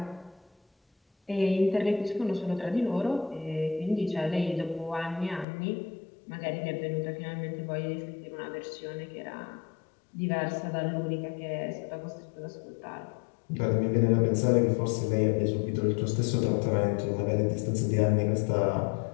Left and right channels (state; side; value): drops out; right; at 5.5 s